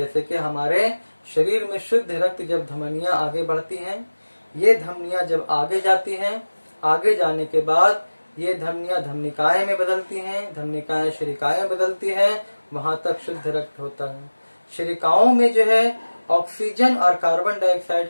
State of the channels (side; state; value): both; inverted; correlation -1.00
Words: कि हमारे शरीर में शुद्ध रक्त जब धमनियां आगे बढ़ती हैं, ये धमनियां जब आगे जाती हैं, आगे जाने के बाद ये धमनियां धमनिकाएं में बदलती हैं, धमनिकाएं शरीकाएं बदलती हैं, वहां तक शुद्ध रक्त होता है। शरीकाओं में जो है ऑक्सीजन और कार्बन